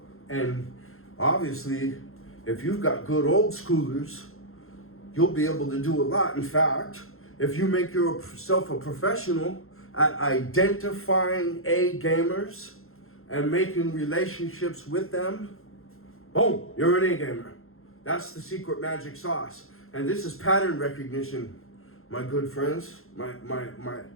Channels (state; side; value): late; right; 0.62 ms